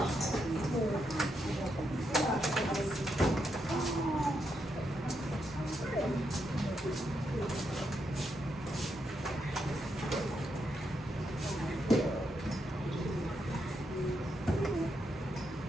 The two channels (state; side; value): normal; both; correlation 0.81